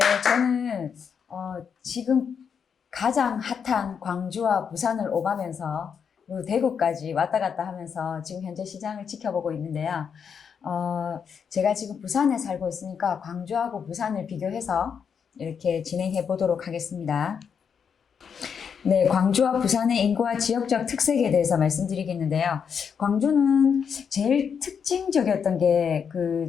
저는 지금 가장 핫한 광주와 부산을 오가면서 그리고 대구까지 왔다 갔다 하면서 지금 현재 시장을 지켜보고 있는데요. 제가 지금 부산에 살고 있으니까 광주하고 부산을 비교해서 이렇게 진행해 보도록 하겠습니다. 네, 광주와 부산의 인구와 지역적 특색에 대해서 말씀드리겠는데요. 광주는 제일 특징적이었던 게 그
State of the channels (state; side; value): quieter; right; 6.9 dB